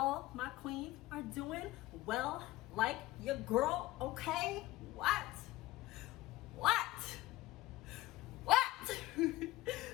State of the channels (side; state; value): right; quieter; 17.6 dB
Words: my queens are doing well like your girl, okay? What?